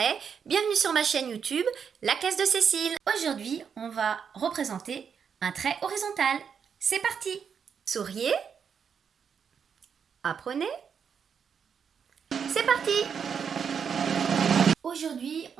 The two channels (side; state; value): left; quieter; 6.9 dB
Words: bienvenue sur ma chaîne YouTube, la classe de Cécile. Aujourd'hui, on va représenter un trait horizontal. C'est parti! Souriez, apprenez, c'est parti! Aujourd'hui,